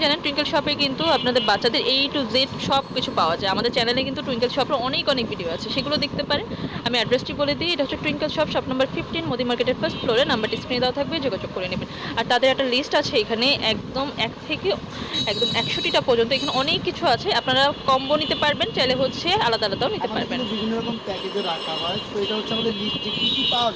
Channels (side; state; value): both; identical; correlation 1.00